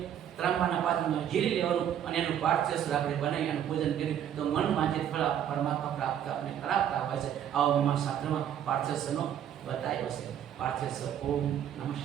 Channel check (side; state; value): left; quieter; 9.8 dB